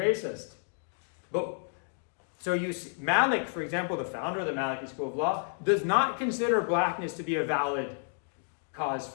Malik, for example, the founder of the Maliki School of Law, does not consider blackness to be a valid cause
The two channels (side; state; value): right; silent; digital silence